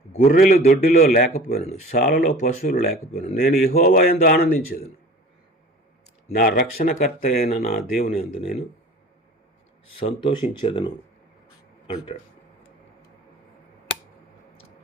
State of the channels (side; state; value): both; normal; correlation 0.42